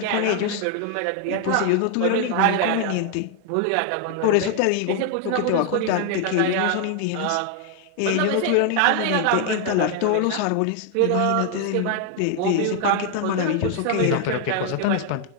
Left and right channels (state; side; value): different; both; correlation 0.00